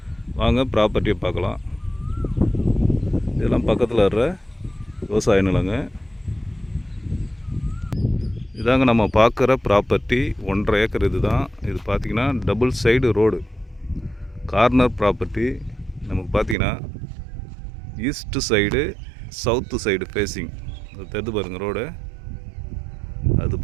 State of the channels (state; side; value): drops out; left; at 16.6 s